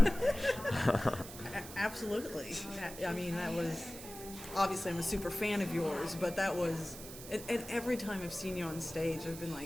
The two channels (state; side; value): noise; right; hiss, 13 dB below the sound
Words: Absolutely. I mean, that was, obviously I'm a super fan of yours, but that was And every time I've seen you on stage, I've been